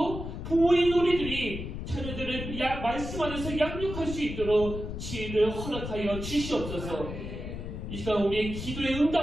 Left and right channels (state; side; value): noise; left; rumble, 7 dB below the sound